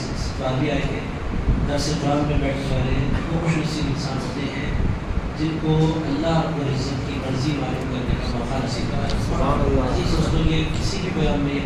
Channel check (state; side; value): identical; both; correlation 1.00